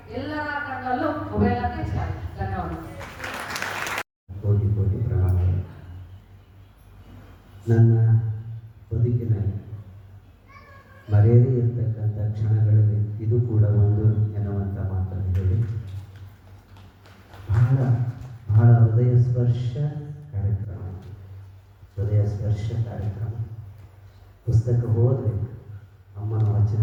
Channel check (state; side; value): identical; both; correlation 1.00